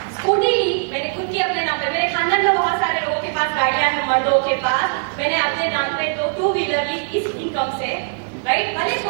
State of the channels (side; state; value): left; silent; digital silence